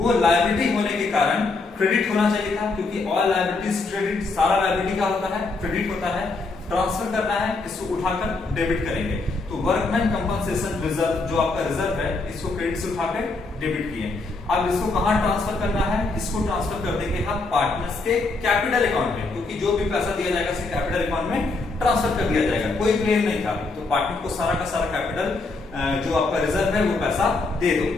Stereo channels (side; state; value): right; quieter; 3.6 dB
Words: लायबिलिटी होने के कारण क्रेडिट होना चाहिए था, क्योंकि ऑल लायबिलिटीज क्रेडिट, सारा लायबिलिटी का होता है, क्रेडिट होता है। ट्रांसफर करना है, इसको उठाकर डेबिट करेंगे। तो वर्कमैन कंपनसेशन रिजर्व जो आपका रिजर्व है इसको क्रेडिट से उठा के डेबिट किए। अब इसको कहां ट्रांसफर करना है, इसको ट्रांसफर कर देंगे हम पार्टनर्स के कैपिटल अकाउंट में, क्योंकि जो भी पैसा दिया जाएगा उसे कैपिटल अकाउंट में ट्रांसफर कर दिया जाएगा, कोई क्लेम नहीं था। तो पार्टनर को सारा का सारा कैपिटल जो आपका रिजर्व है वो पैसा दे दो।